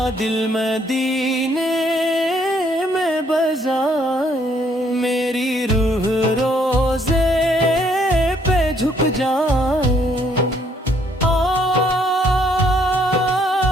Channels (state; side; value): normal; both; correlation 0.67